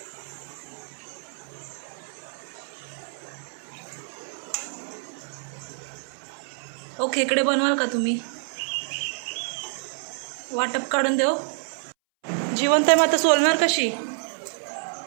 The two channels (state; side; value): silent; left; 60 dB below the other